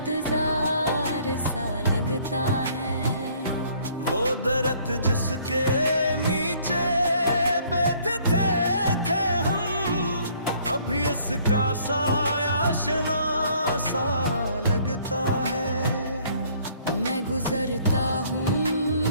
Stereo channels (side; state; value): both; inverted; correlation -0.60